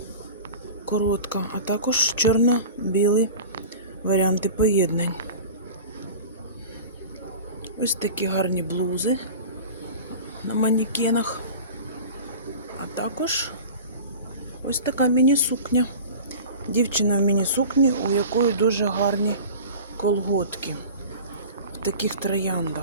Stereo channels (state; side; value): inverted; both; correlation -0.36